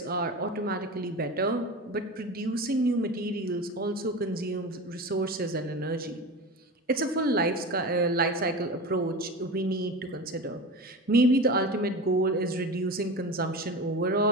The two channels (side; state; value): both; normal; correlation 0.29